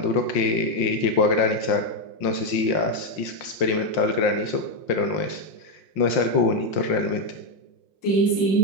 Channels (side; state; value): right; late; 5.6 ms